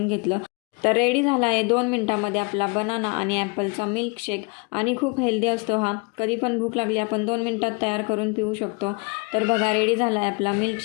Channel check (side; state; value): right; quieter; 31.4 dB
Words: घेतलं. तर रेडी झाला आहे 2 मिनटामध्ये आपला बनाना आणि ॲपलचा मिल्कशेक. आणि खूप हेल्दी असतो हा. कधी पण भूक लागली आपण 2 मिनटात तयार करून पिऊ शकतो. तर बघा, रेडी झाला आहे आपला